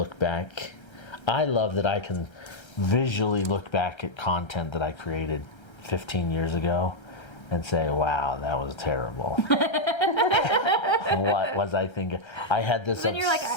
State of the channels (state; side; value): late; right; 1.3 ms